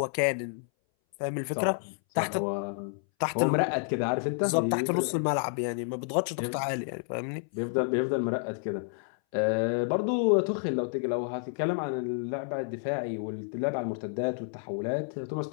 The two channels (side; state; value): right; silent; 58 dB below the other